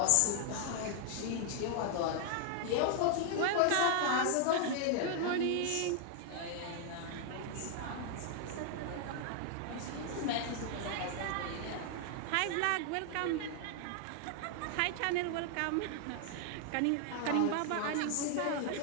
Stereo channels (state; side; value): different; both; correlation 0.00